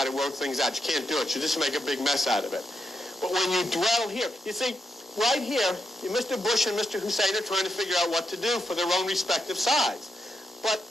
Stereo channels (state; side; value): normal; both; correlation 0.84